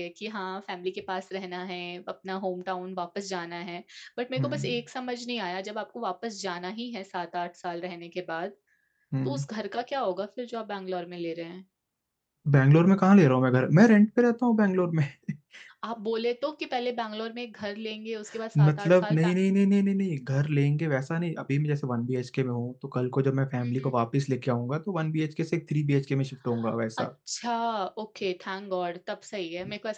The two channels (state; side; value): identical; both; correlation 1.00